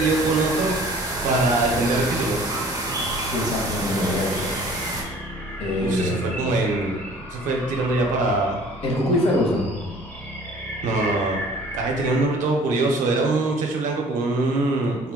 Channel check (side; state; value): both; normal; correlation 0.51